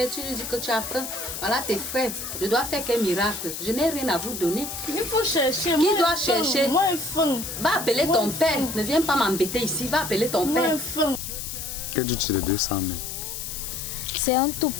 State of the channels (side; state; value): left; noise; hiss, 7 dB below the sound